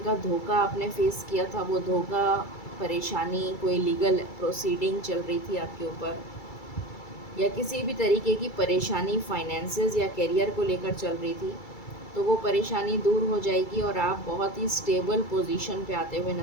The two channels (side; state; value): right; late; 2.3 ms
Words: धोखा आपने फेस किया था, वो धोखा, परेशानी, कोई लीगल प्रोसीडिंग चल रही थी आपके ऊपर, या किसी भी तरीके की परेशानी फाइनेंसेस या करियर को लेकर चल रही थी, तो वो परेशानी दूर हो जाएगी, और आप बहुत ही स्टेबल पोजीशन पे आते हुए